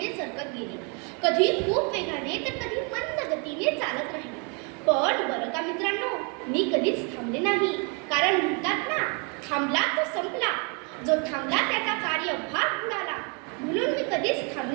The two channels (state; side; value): quieter; left; 34.8 dB